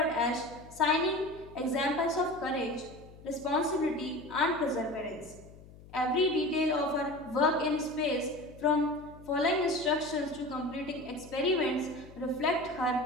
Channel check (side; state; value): left; noise; hum, 20 dB below the sound